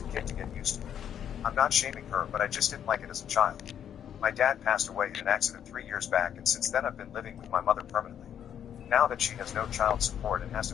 a kid to get used to it. I'm not shaming her, but I just didn't like it as a child. My dad passed away in an accident 3 years back, and since then I've been living with my mother permanently. Now that she has no child support and has to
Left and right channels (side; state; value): right; quieter; 9.3 dB